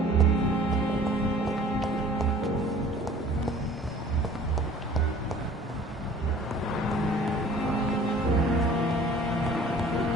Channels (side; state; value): both; normal; correlation 0.49